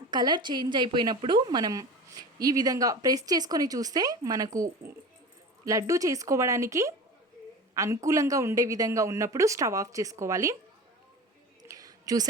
కలర్ చేంజ్ అయిపోయినప్పుడు మనం ఈ విధంగా ప్రెస్ చేసుకొని చూస్తే మనకు లడ్డు చేసుకోవడానికి అనుకూలంగా ఉండే విధంగా ఉన్నప్పుడు స్టవ్ ఆఫ్ చేసుకోవాలి.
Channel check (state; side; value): normal; both; correlation 0.33